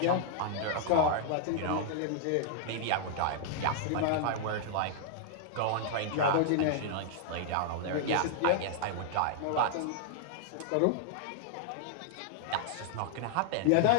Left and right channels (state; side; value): different; both; correlation -0.01